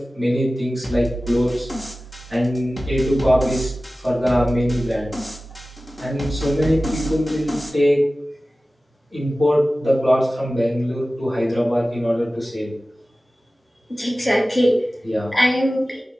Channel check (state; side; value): normal; both; correlation 0.96